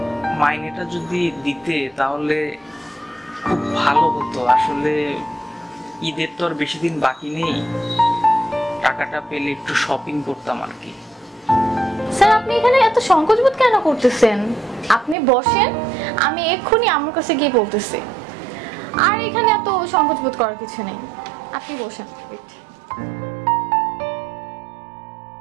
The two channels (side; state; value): left; drops out; at 15.2 s